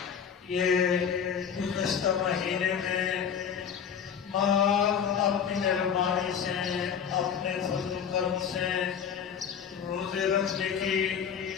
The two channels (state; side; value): quieter; right; 7.6 dB